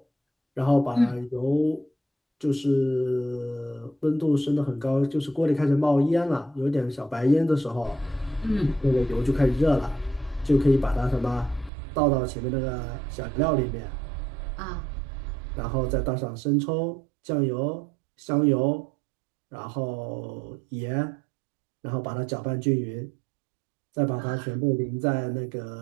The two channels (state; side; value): drops out; left; at 11.7 s